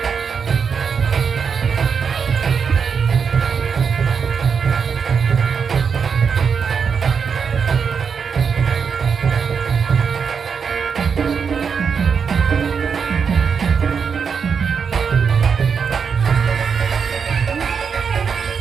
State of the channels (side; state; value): left; quieter; 6.3 dB